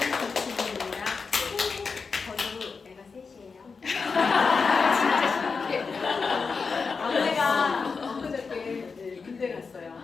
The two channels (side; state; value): right; quieter; 4.9 dB